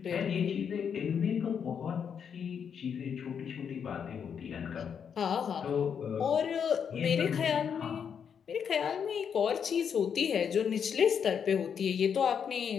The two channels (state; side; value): quieter; right; 7.3 dB